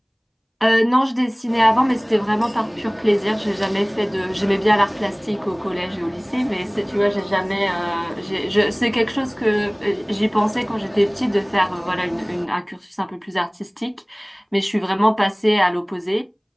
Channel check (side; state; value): both; identical; correlation 1.00